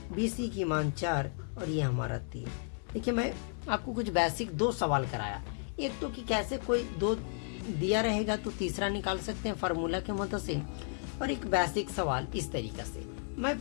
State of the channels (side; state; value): right; silent; digital silence